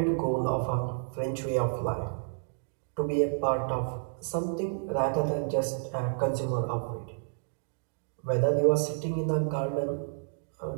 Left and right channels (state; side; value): silent; left; digital silence